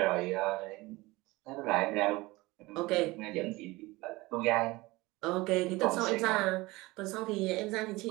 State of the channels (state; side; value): quieter; left; 21.2 dB